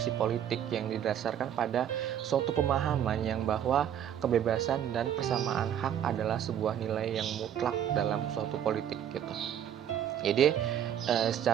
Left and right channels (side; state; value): left; quieter; 9.7 dB